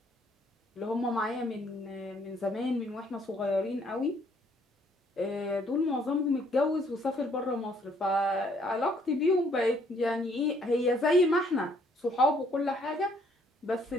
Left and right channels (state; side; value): normal; both; correlation 0.65